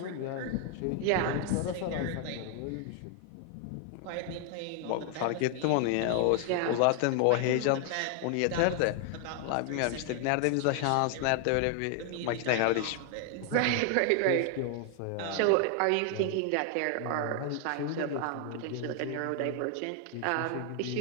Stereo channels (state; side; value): different; both; correlation 0.00